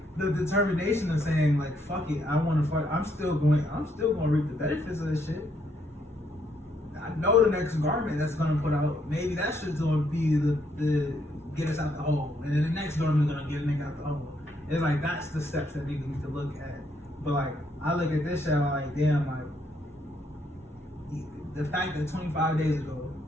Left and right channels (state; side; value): normal; both; correlation 0.73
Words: the determination of saying like, fuck it, I want to fight. I'm still going to reap the benefits of this shit. I know the next garment that's gonna put out, maybe that shit's gonna be the get us out the hole, and then the next garment's gonna get a nigga out the hole. It's like that's the steps that niggas need to look at. But like I look at this shit, I'm like, damn, like the fact that 25 days ago